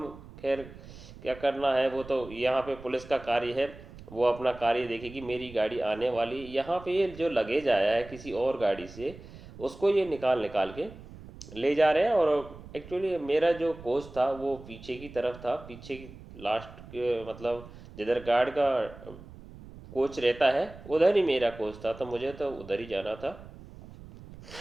खैर क्या करना है, वो तो यहाँ पे पुलिस का कार्य है, वो अपना कार्य देखेगी। मेरी गाड़ी आने वाली, यहाँ पे ये जो लगेज आया है किसी और गाड़ी से, उसको ये निकाल निकाल के ले जा रहे हैं। और एक्चुअली मेरा जो कोच था वो पीछे की तरफ था, पीछे की लास्ट के, मतलब जिधर गार्ड का कोच रहता है उधर ही मेरा कोच था, तो मुझे तो उधर ही जाना था।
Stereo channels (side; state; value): right; noise; rumble, 17 dB below the sound